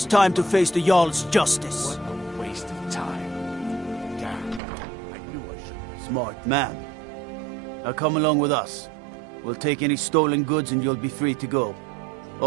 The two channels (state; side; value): drops out; left; at 4.6 s